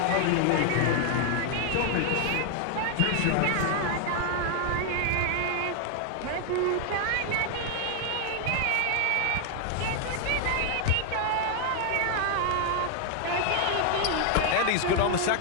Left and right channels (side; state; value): both; different; correlation 0.00